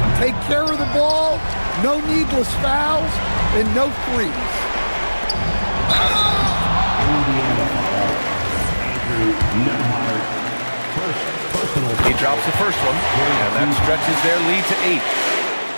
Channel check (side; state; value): both; inverted; correlation -1.00